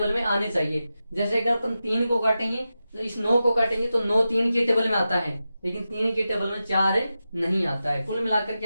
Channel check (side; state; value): both; inverted; correlation -0.92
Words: में आने चाहिए। जैसे अगर अपन 3 को काटेंगे तो इस 9 को काटेंगे तो 9 3 के टेबल में आता है, लेकिन 3 के टेबल में 4 नहीं आता है। कुल मिलाकर